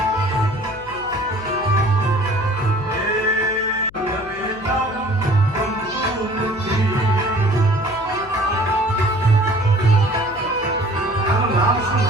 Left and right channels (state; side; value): noise; left; hum, 21 dB below the sound